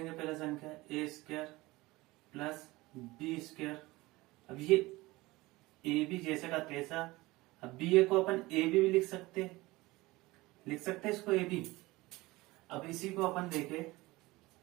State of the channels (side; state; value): left; quieter; 20.6 dB